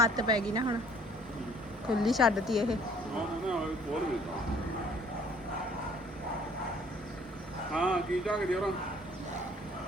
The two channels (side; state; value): both; normal; correlation 0.57